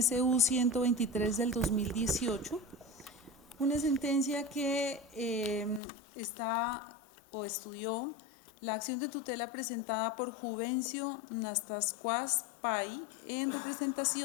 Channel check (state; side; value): drops out; right; at 5.8 s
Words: SU 123 del 2018, una sentencia que estudió la acción de tutela presentada por Juvencio Nastascuas Pay en